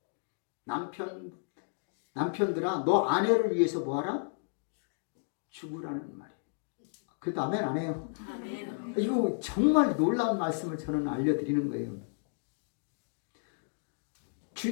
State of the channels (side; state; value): right; silent; digital silence